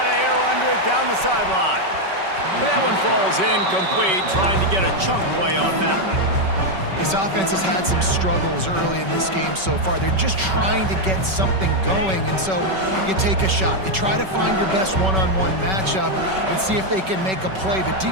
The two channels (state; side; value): late; left; 5.3 ms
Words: of air under it down the sideline. But that one falls incomplete, trying to get a chunk play on that one. This offense has had some struggles early in this game so far. They're just trying to get something going, and so you take a shot. You try to find your best one-on-one matchup and see if they can make a play. The